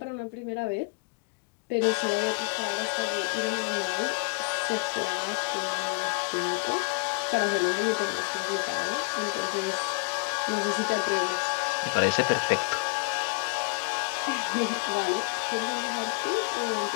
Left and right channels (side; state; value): right; quieter; 33.3 dB